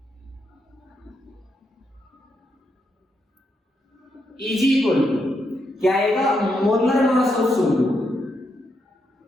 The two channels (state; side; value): normal; both; correlation 0.81